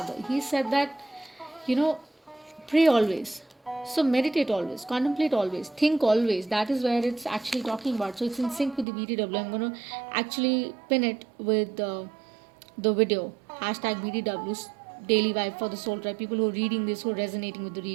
He said that, you know, pray always, so meditate always, contemplate always, think always. That is where it's actually talking about. So it's in sync with the BTW. I'm going to actually pin it with the video, hashtag BTWs, daily vibe for the soul tribe. People who are reading this, who are resonating with the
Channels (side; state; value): left; drops out; at 8.8 s